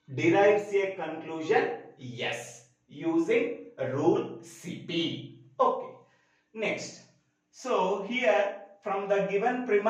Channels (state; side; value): identical; both; correlation 1.00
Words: derives a conclusion yes using rule CP. Okay, next. So here from the given